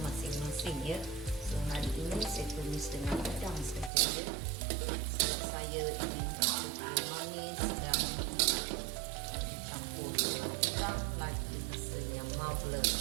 masing-masing ya. So hari ini saya tumis dengan udang saja ya. Sebab saya ingin rasa dia manis dan campur dengan udang lagi rasanya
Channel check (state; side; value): drops out; left; at 3.9 s